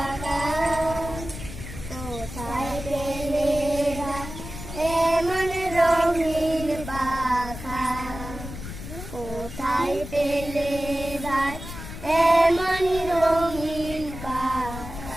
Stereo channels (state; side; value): noise; left; rumble, 10 dB below the sound